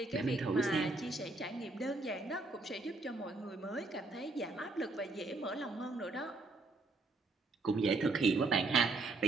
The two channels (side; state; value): left; quieter; 3.3 dB